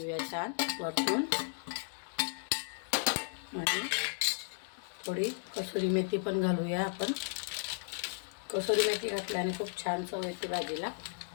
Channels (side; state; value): right; silent; digital silence